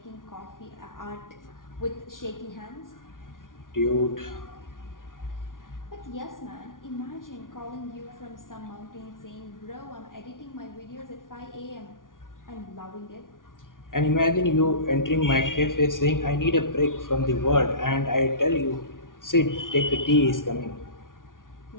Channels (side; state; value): right; late; 0.89 ms